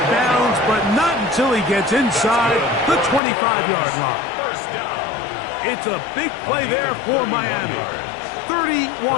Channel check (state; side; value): drops out; right; at 3.2 s